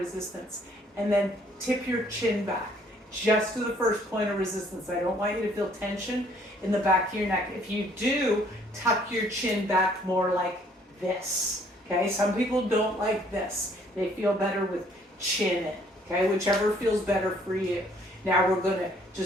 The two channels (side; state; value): both; normal; correlation 0.62